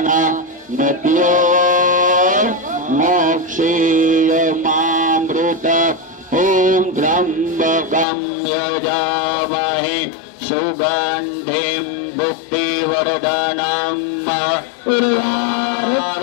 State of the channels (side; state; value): right; drops out; at 8.1 s